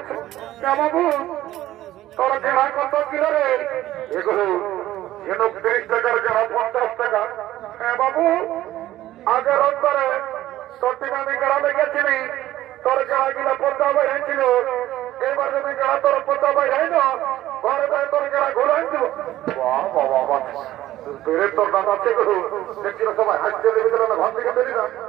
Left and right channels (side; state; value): left; quieter; 14.5 dB